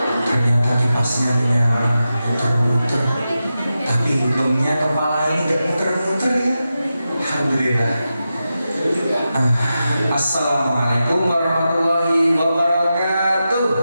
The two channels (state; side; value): inverted; both; correlation -0.91